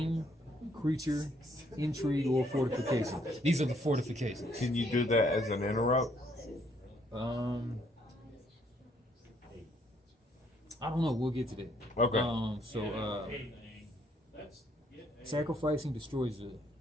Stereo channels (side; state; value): both; normal; correlation 0.68